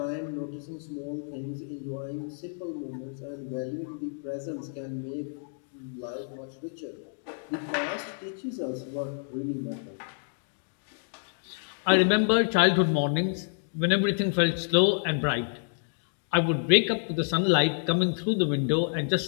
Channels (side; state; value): right; silent; digital silence